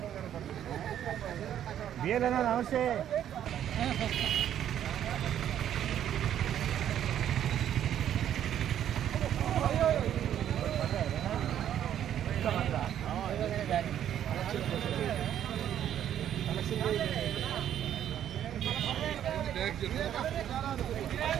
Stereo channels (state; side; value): quieter; left; 10.5 dB